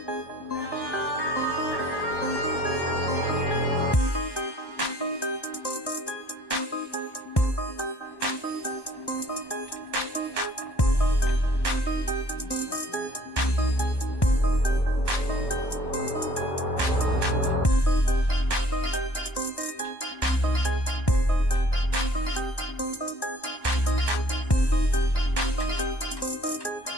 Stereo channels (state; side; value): late; right; 1.1 ms